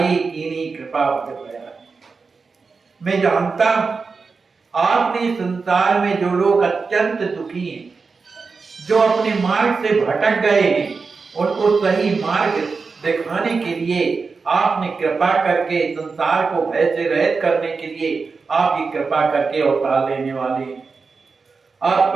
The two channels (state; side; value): quieter; left; 4.7 dB